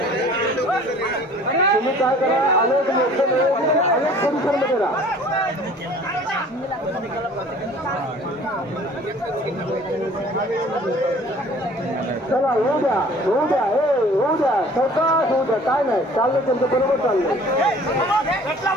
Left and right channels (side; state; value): both; normal; correlation 0.50